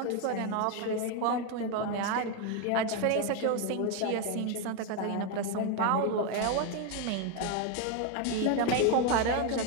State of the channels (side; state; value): both; different; correlation 0.01